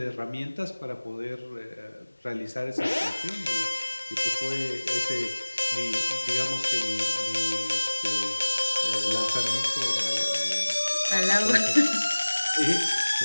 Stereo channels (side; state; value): both; inverted; correlation -1.00